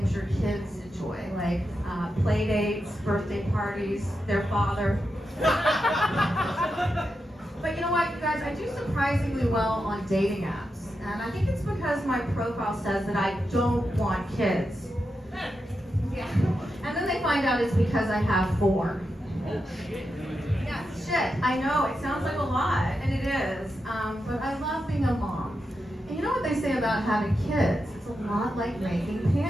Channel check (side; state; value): both; normal; correlation 0.87